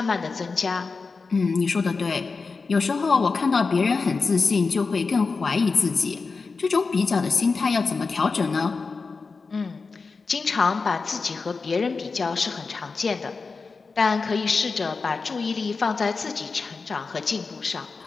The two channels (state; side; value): quieter; right; 4.4 dB